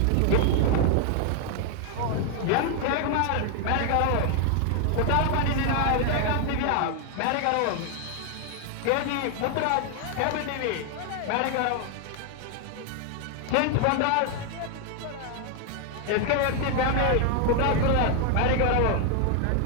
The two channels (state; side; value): different; both; correlation 0.00